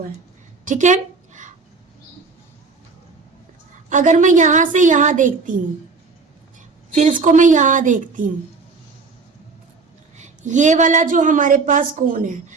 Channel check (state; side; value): quieter; left; 4.4 dB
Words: है। ठीक है, अगर मैं यहां से यहां देखती हूं, फिर इसको मैं यहां देखती हूं, ये वाला जो हमारे पास कोण है